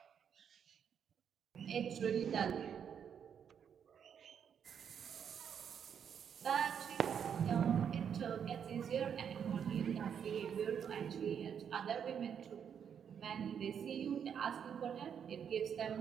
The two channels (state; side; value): quieter; left; 7.9 dB